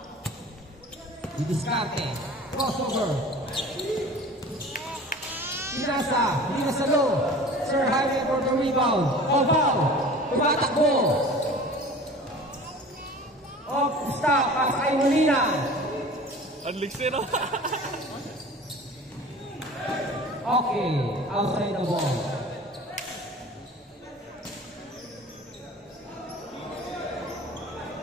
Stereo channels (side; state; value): both; normal; correlation 0.41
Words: Didiskarte. Crossover. Pinasa. Pinasa low. Sir Jaime for the rebound. Oval. Tumatakbo. Off stop. Pasa kay Molina. Unlixir. Okay. Outside the ball.